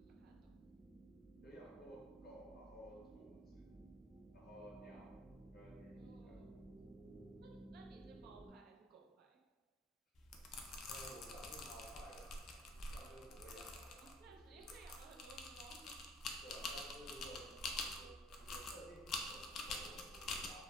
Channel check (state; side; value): normal; both; correlation 0.55